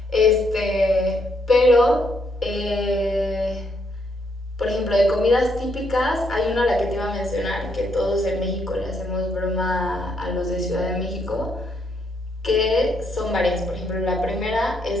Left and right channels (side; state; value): both; normal; correlation 0.74